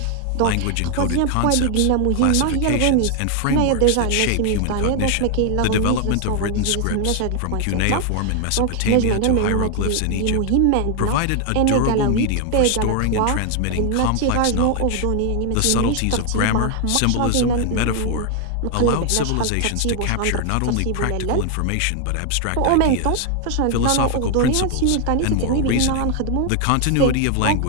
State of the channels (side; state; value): both; different; correlation 0.00